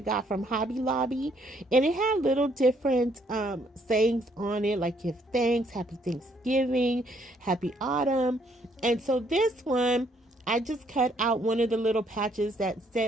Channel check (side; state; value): both; normal; correlation 0.68